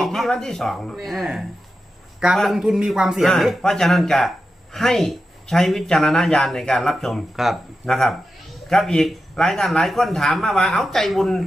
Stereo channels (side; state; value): both; normal; correlation 0.90